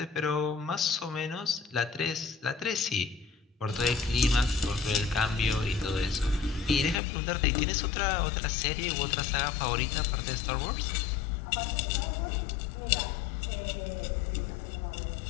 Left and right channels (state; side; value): drops out; right; at 7.0 s